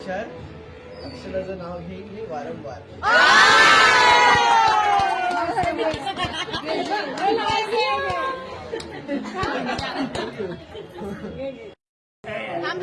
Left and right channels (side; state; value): both; identical; correlation 1.00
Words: अक्षराचं नाव घेईल वारंवार. थांब